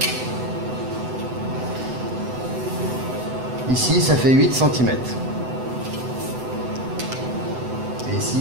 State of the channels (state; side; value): late; left; 7.9 ms